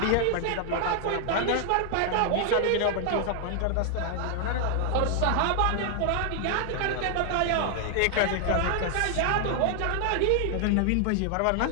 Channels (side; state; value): both; different; correlation 0.00